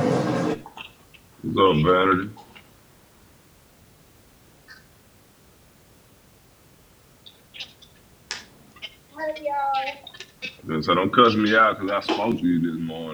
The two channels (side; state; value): both; identical; correlation 1.00